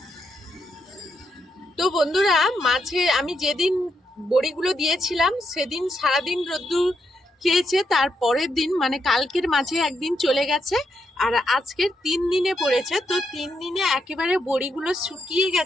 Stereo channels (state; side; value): normal; both; correlation 0.80